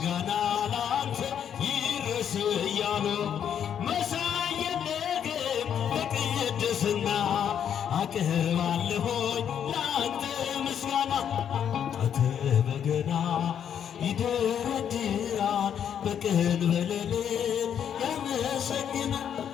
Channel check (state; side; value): quieter; right; 8.8 dB